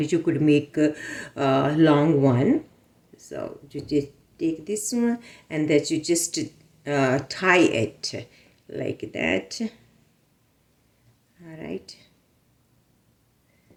you could make a long one. So you just take this one, and that you just tie it like that. All right.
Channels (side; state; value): both; identical; correlation 1.00